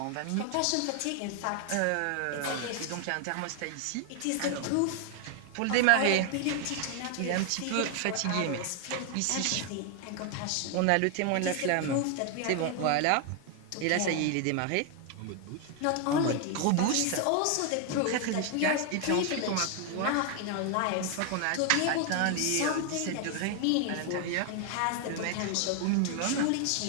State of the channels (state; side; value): different; both; correlation 0.00